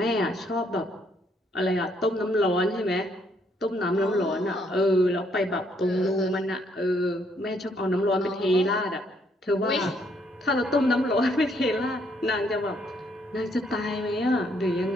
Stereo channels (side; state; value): both; normal; correlation 0.70